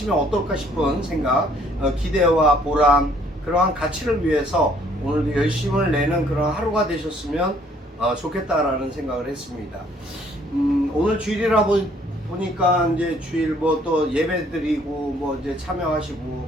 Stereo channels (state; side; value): normal; both; correlation 0.62